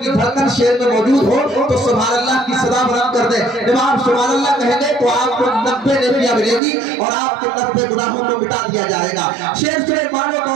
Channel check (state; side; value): drops out; left; at 6.6 s